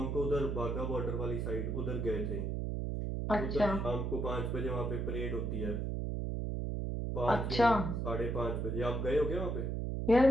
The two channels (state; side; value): noise; right; hum, 1 dB below the sound